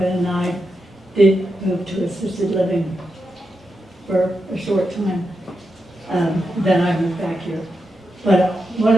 and I did move to assisted living for a short time. Then I moved back here. But one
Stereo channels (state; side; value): normal; both; correlation 0.86